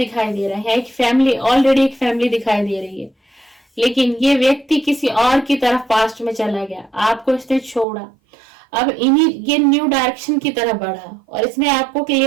दे रहा है। एक फैमिली, ऑलरेडी एक फैमिली दिखाई दे रही है, लेकिन ये व्यक्ति किसी और की तरफ पास्ट में चला गया, आपको इसने छोड़ा, अब ये न्यू डायरेक्शन की तरफ बढ़ा, और इसने आपको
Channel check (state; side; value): drops out; left; at 7.9 s